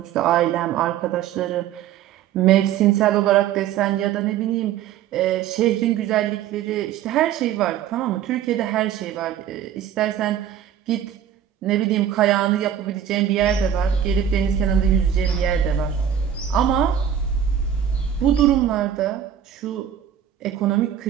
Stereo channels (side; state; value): left; quieter; 9.5 dB